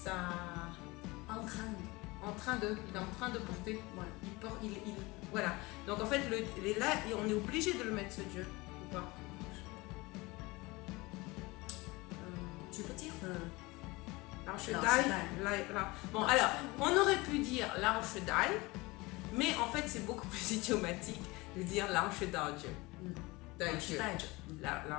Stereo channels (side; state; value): right; quieter; 23.0 dB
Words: En train de, il est en train de porter. Voilà. Il porte, voilà. Donc en fait, là, on est obligé de le mettre ce je ou pas? Tu peux dire Lao Shi Dai. Bon, alors, on aurait pu dire Lao Shi Dai, mais en fait, c'est beaucoup plus idiomatique de dire Lao Shi Dai Je. Dai Je.